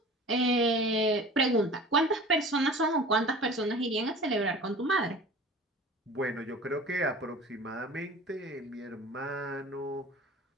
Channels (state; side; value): normal; both; correlation 0.41